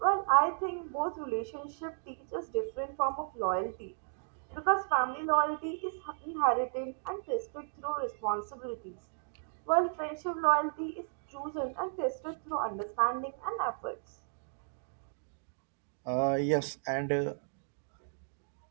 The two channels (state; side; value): silent; left; digital silence